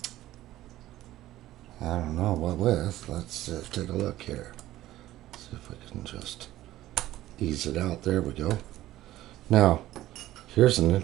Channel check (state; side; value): quieter; left; 14.9 dB